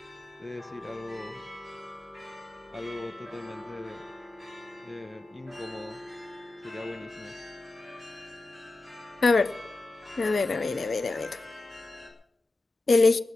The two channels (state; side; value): quieter; right; 3.1 dB